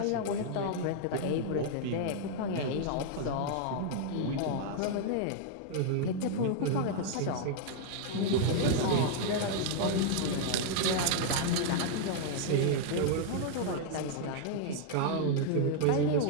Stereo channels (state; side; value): different; both; correlation 0.00